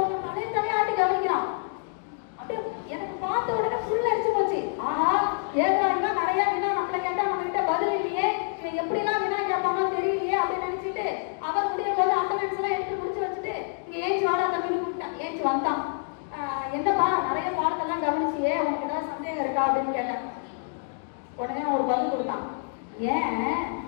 தலையாட்டி கவனிக்கிறான். அப்படியே எனக்கு பார்த்த உடனே ஃபுல் அடிச்சு போச்சு. ஆஹா ஏதாடுனா நிறைய வினா நம்மள கேட்டா நம்ம கிட்ட பதில் இல்லையே, இவன் எப்படிலாம் வினா கேட்பானோ தெரியலையே அப்படின்னு நினைச்சிட்டு அவர் முடியும் போது அட்டனன்ஸ் எல்லாம் எடுத்து முடிச்சு வச்சுட்டு இங்க ஏஞ்சி வாடா தம்பி ஏஞ்சி வந்தான். என்னப்பா நிறைய பாடத்தெல்லாம் கவனிச்சியே, உனக்கு ஏதாவது சந்தேகம் இருக்கா அப்படின்னு கேட்டேன். உடனே ஒரு பதில் கொடுத்தான். ஏன்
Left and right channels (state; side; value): silent; right; digital silence